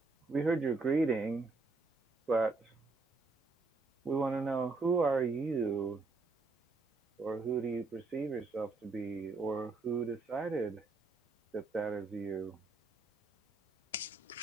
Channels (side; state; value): left; quieter; 3.7 dB